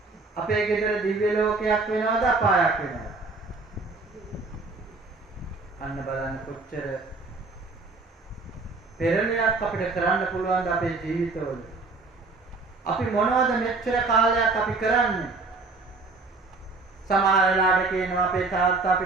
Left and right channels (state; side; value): quieter; left; 3.7 dB